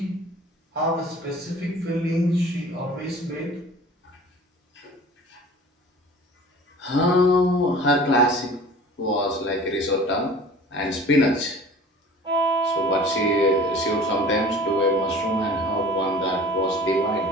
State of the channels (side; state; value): both; normal; correlation 0.44